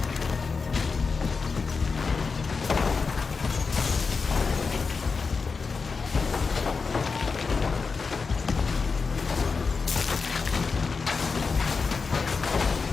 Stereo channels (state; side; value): quieter; right; 4.8 dB